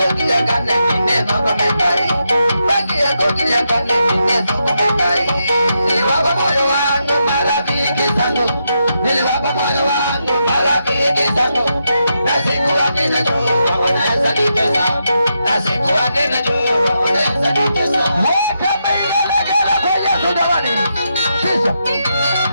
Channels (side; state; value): both; inverted; correlation -0.83